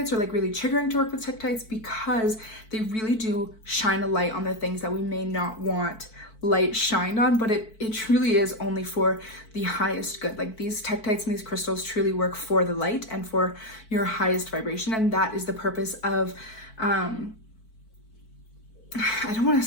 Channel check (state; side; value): late; right; 4.5 ms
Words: or like really triggering to work with tektites, because they really do shine a light on the things that we may not want light shined on, but it truly is only for the highest good. Like these tektites and these crystals truly work for the light and for your highest vibration, and that is the purpose of I don't want to